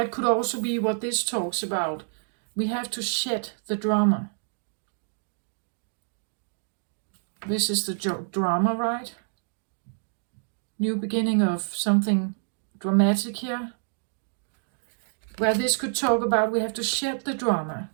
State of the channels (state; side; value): silent; left; digital silence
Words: could also be what this talks about. We have to shed the drama. This is the drama, right? New beginning of something dramatic here. Where this could talk about we have to shed the drama.